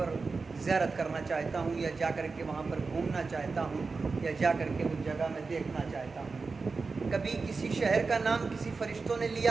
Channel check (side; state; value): left; quieter; 4.3 dB